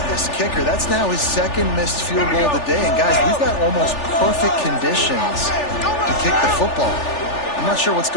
this kicker. That's now his second missed field goal of the day. And guys, we've got almost perfect conditions to kick the football. I'm not sure what's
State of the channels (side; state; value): right; late; 3.4 ms